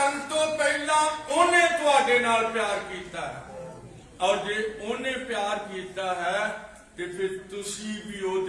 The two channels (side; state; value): both; identical; correlation 1.00